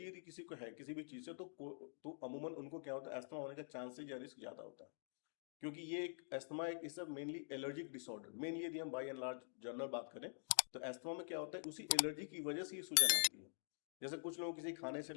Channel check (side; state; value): right; silent; digital silence